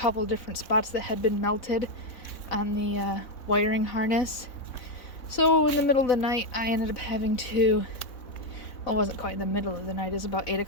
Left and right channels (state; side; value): late; right; 3.6 ms